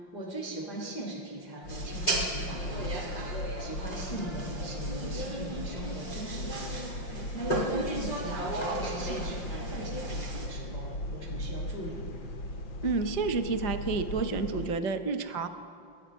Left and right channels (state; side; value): late; right; 5.7 ms